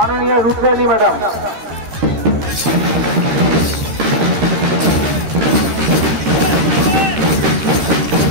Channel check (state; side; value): late; left; 13 ms